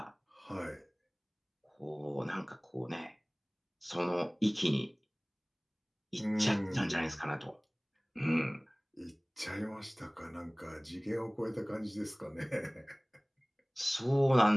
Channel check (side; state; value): both; identical; correlation 1.00